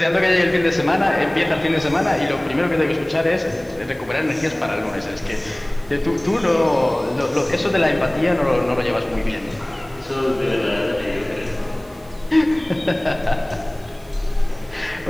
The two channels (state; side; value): noise; right; hiss, 28 dB below the sound